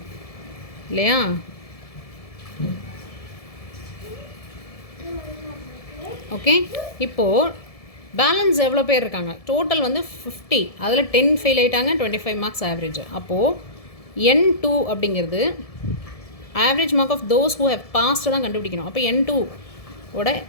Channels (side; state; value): right; late; 1.7 ms